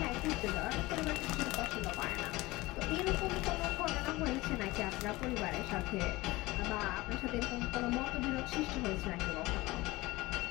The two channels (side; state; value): right; quieter; 20.4 dB